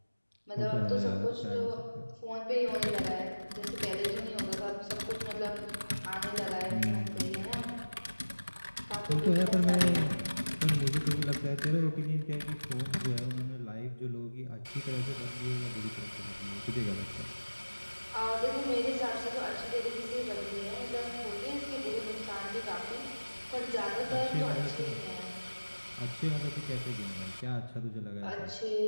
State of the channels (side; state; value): both; inverted; correlation -1.00